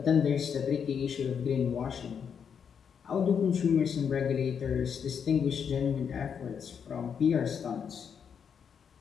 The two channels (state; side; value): quieter; right; 7.2 dB